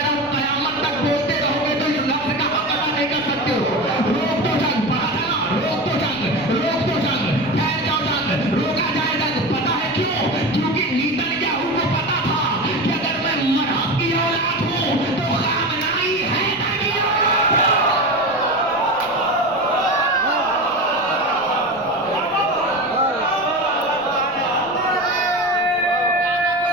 रहा हूं, कयामत तक बोलते रहोगे तो इस लफ्ज का हक अदा नहीं कर सकते हो। रोक दो जंग, पढ़ा था ना, रोक दो जंग, रोक दो जंग, ठहर जाओ जंग, रोका जाए जंग। पता है क्यों? क्योंकि नेतन्याहू को पता था कि अगर मैं मरहब की औलाद हूं तो खामनेई हैदर की औलाद है।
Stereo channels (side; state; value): left; noise; rumble, 25 dB below the sound